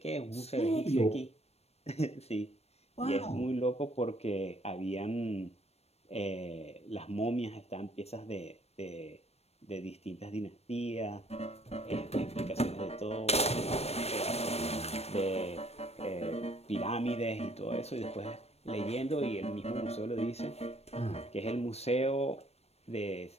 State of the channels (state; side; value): late; right; 0.31 ms